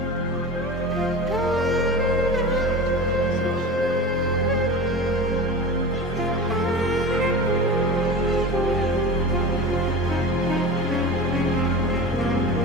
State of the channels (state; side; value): normal; both; correlation 0.32